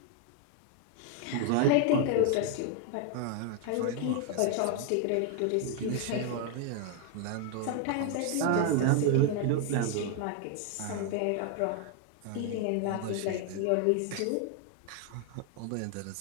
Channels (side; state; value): both; different; correlation 0.00